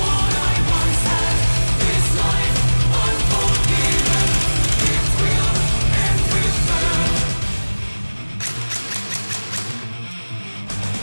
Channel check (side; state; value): both; inverted; correlation -1.00